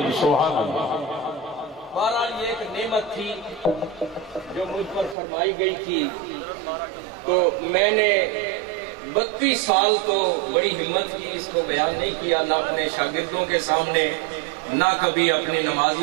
بہرحال یہ ایک نعمت تھی جو مجھ پر فرمائی گئی تھی، تو میں نے 32 سال تو بڑی ہمت کی، اس کو بیان نہیں کیا، نہ اپنے شاگردوں کے سامنے، نہ کبھی اپنے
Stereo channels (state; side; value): drops out; left; at 5.2 s